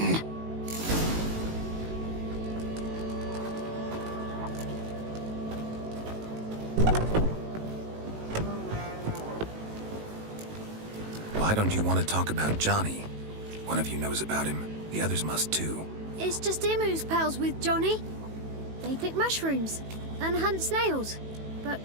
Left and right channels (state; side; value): late; left; 18 ms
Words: Why don't you want to talk about Johnny? One of you knows about him. The others must too. It's just him who's pals with Johnny. They pick mushrooms and hunt snails. But